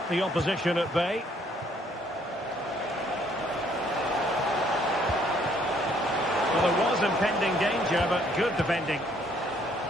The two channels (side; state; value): both; normal; correlation 0.65